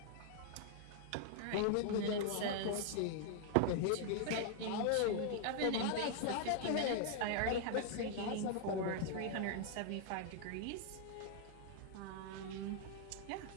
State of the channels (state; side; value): different; both; correlation 0.00